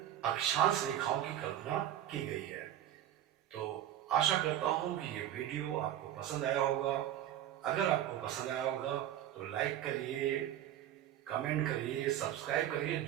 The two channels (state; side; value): quieter; left; 11.7 dB